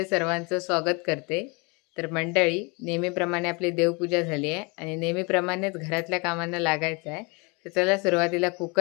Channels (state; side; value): quieter; right; 29.5 dB